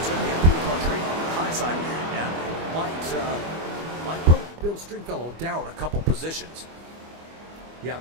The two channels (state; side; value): late; left; 25 ms